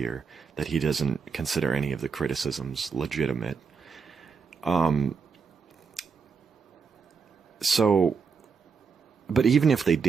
that he doesn't consider any of the criticisms legitimate. So, but even if they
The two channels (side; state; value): left; quieter; 5.5 dB